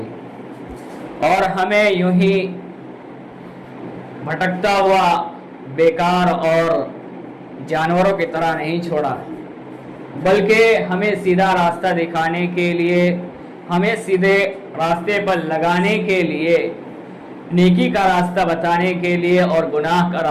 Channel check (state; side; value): identical; both; correlation 1.00